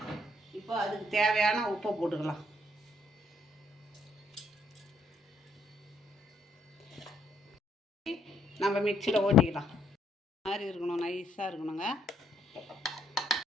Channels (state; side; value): normal; both; correlation 0.70